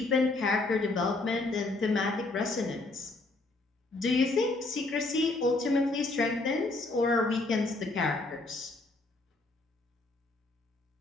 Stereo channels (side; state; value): right; quieter; 3.1 dB